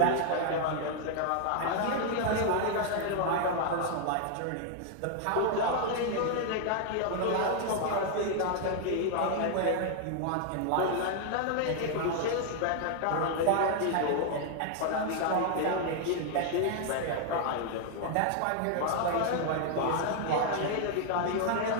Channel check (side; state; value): both; different; correlation 0.00